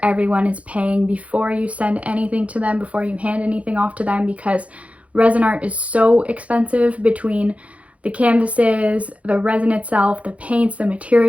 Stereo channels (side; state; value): left; late; 0.065 ms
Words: everyone is paying before you send anything to them, before you hand anything off to them, because resin art is so expensive. Between the canvases, the resin itself, the paints, the